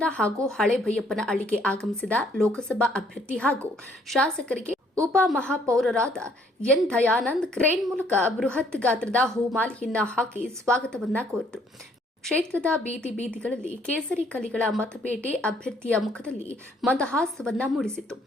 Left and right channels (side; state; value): both; normal; correlation 0.64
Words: ಹಾಗೂ ಹಳೆ ಭೈಯಪ್ಪನ ಹಳ್ಳಿಗೆ ಆಗಮಿಸಿದ ಲೋಕಸಭಾ ಅಭ್ಯರ್ಥಿ ಹಾಗೂ ಶಾಸಕರಿಗೆ ಉಪ ಮಹಾಪೌರರಾದ ಎನ್ ದಯಾನಂದ್ ಕ್ರೇನ್ ಮೂಲಕ ಬೃಹತ್ ಗಾತ್ರದ ಹೂಮಾಲೆಯನ್ನ ಹಾಕಿ ಸ್ವಾಗತವನ್ನ ಕೋರಿದರು. ಕ್ಷೇತ್ರದ ಬೀದಿ ಬೀದಿಗಳಲ್ಲಿ ಕೇಸರಿ ಕಲಿಗಳ ಮತಪೇಟೆ ಅಭ್ಯರ್ಥಿಯ ಮುಖದಲ್ಲಿ ಮಂದಹಾಸವನ್ನ ಮೂಡಿಸಿತ್ತು.